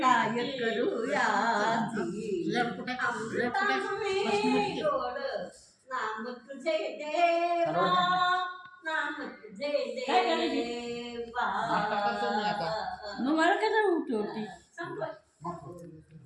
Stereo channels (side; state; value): both; identical; correlation 1.00